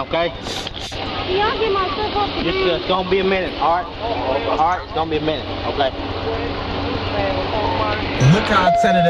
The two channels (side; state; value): both; identical; correlation 1.00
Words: Can y'all get my stuff off the bed? It's gonna be a minute, alright? Alright, it's gonna be a minute, okay? Look how